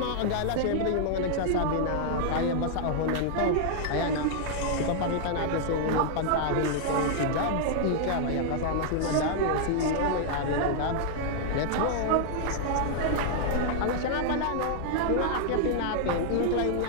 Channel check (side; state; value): both; different; correlation -0.01